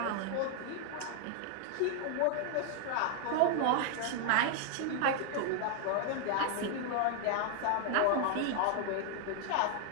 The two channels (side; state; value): both; different; correlation 0.00